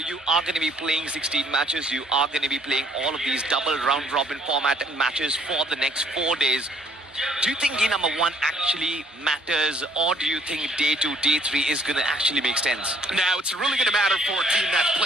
are going to be playing 16 matches. You are going to be playing all of these double round-robin format matches for the next 4 days. Do you think day number 1 actually matters, or do you think day 2, day 3 is going to actually make sense? Now, it's really going to matter for a team that's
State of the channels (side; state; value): both; normal; correlation 0.62